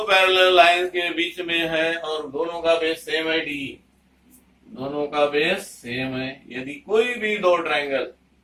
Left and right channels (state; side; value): identical; both; correlation 1.00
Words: पैरेलल लाइंस के बीच में है और दोनों का बेस सेम है D। दोनों का बेस सेम है। यदि कोई भी दो ट्रायंगल